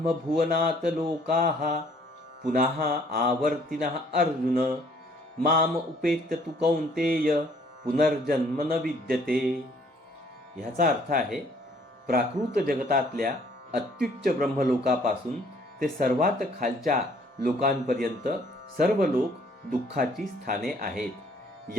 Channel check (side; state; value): both; normal; correlation 0.61